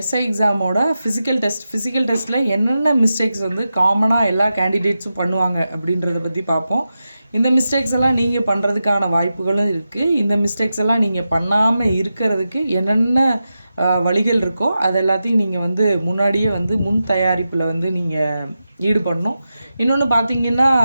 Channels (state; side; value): inverted; both; correlation -0.91